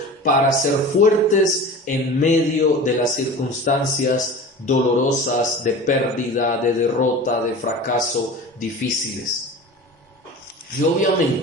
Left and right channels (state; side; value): normal; both; correlation 0.35